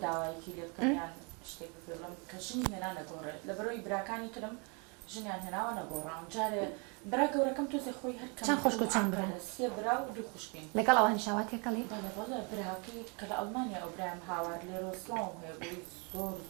داوایەکی لێ بکەمیان شتێک بپێ بڵم کە ژنی هێنا نەگۆڕێت لە بەرەوەی براکانی ترم ژنیان هێناوە نەگۆڕاون جارێ برا گەورەکەم تۆزێ خۆی هەر چەند خوشک و چەند برا سێ برا و دوو خوشکین لەگەڵ ئەوانی شاواتێکەڵی بەڵێ بەڵێ براکەی کە لە ئەڵمانیا ئەو برایم هاوار لێرە سڵاوم هەیە بۆی زۆر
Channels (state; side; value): quieter; left; 33.7 dB